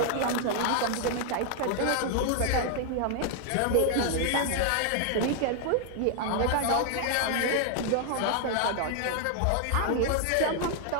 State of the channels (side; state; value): both; different; correlation 0.00